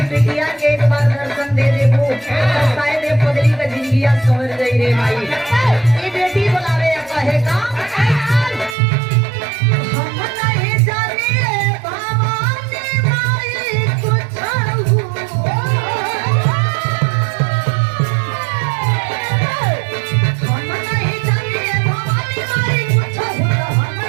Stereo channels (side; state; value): left; drops out; at 8.8 s